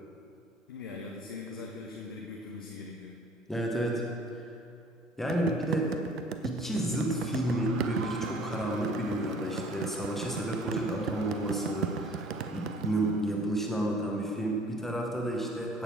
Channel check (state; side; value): normal; both; correlation 0.52